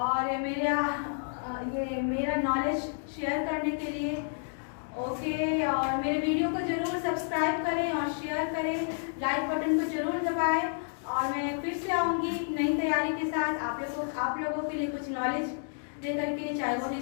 मेरा नॉलेज शेयर करने के लिए। ओके, और मेरे वीडियो को जरूर सब्सक्राइब करें और शेयर करें, लाइक बटन को जरूर दबाएं और मैं फिर से आऊँगी नई तैयारी के साथ आप लोगों के लिए कुछ नॉलेज लेकर के, चाहे वो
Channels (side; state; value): right; silent; digital silence